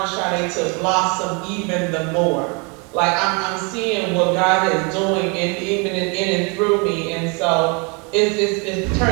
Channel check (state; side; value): quieter; left; 32.3 dB